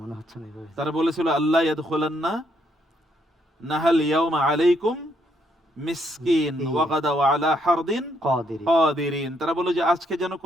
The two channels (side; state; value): both; normal; correlation 0.73